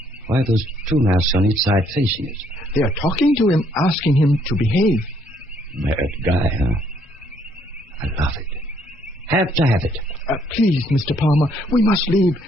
Why are those two masks on each side facing us? They are talking to him, asking him to behave. Mad guy, huh? I love it. Have to have it. Please, Mr. Palmer, we must leave.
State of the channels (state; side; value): normal; both; correlation 0.68